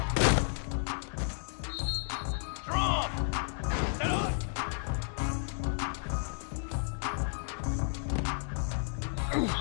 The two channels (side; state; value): right; silent; digital silence